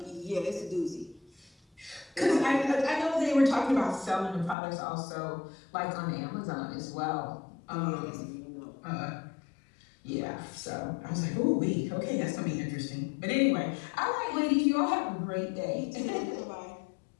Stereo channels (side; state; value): right; drops out; at 4.5 s